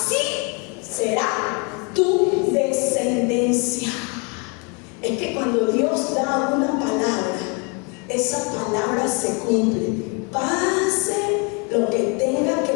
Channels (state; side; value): quieter; right; 33.0 dB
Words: será tu descendencia. Es que cuando Dios da una palabra, esa palabra se cumple. Pase lo que tenga que